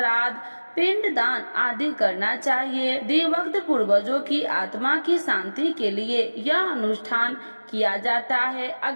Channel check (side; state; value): both; inverted; correlation -1.00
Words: पिंडदान आदि करना चाहिए। दिवंगत पूर्वजों की आत्मा की शांति के लिए यह अनुष्ठान किया जाता है।